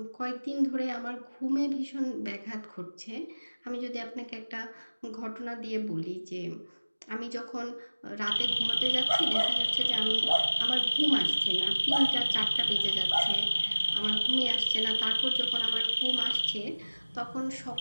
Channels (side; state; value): both; inverted; correlation -1.00